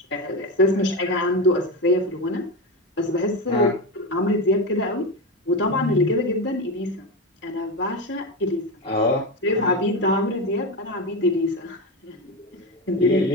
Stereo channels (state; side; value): normal; both; correlation 0.17